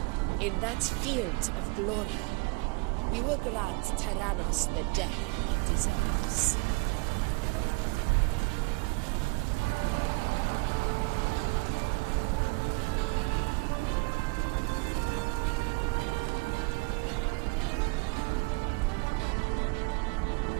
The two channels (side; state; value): left; quieter; 29.0 dB